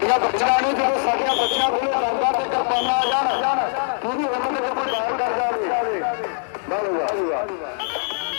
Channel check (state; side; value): silent; right; 56 dB below the other